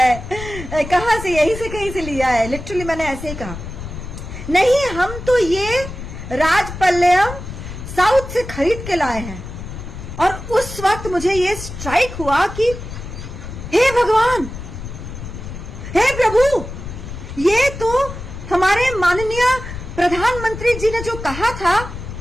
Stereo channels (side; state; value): left; noise; rumble, 10 dB below the sound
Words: कहाँ से, यहीं से कहीं से लिया है। लिटरली मैंने ऐसे ही कहा, नहीं हम तो ये राजपल्लम साउथ से खरीद के लाए हैं। और उस वक्त मुझे ये स्ट्राइक हुआ कि हे भगवान, हे प्रभु, ये तो हमारे माननीय प्रधानमंत्री जी ने जो कहा था